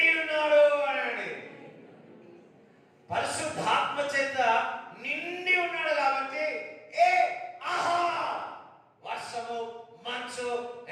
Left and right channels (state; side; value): identical; both; correlation 1.00